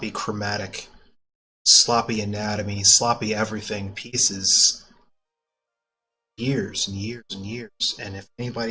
chromatic, sloppy anatomy, sloppy everything pieces years and years and years. And if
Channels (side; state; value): both; identical; correlation 1.00